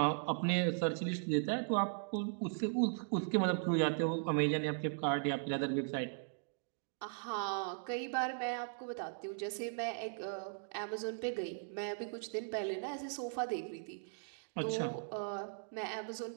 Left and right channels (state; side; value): silent; left; digital silence